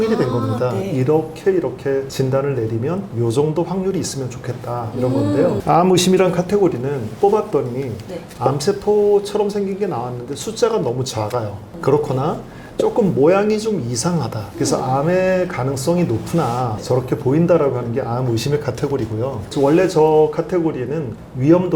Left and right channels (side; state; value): both; identical; correlation 1.00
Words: 된 겁니다. 네. 이렇게 진단을 내리면 요 정도 확률이 있으면 좋겠다 이런 건데요. 암 의심이란 카테고리는 뽑았더니 암세포처럼 생긴 게 나왔는데 숫자가 너무 작아요. 그렇거나 조금 모양이 좀 이상하다. 그래서 암의 가능성이 높으나 저렇게 보인다라고 하는 게 암 의심의 카테고리고요. 원래 저 카테고리에는